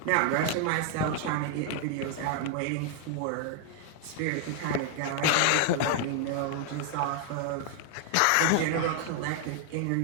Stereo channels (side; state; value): both; different; correlation 0.00